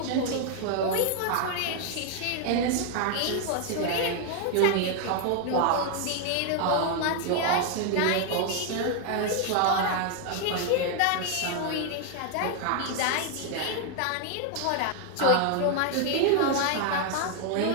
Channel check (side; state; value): both; different; correlation 0.01